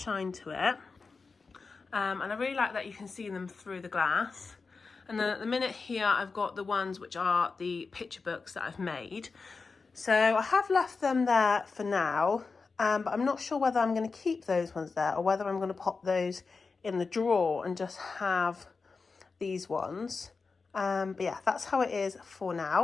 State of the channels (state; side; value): quieter; right; 4.5 dB